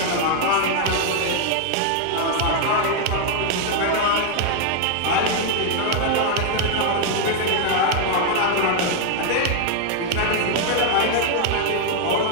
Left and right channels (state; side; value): different; both; correlation 0.00